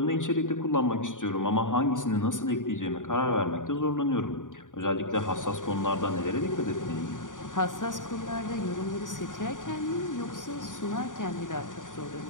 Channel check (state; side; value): late; right; 0.88 ms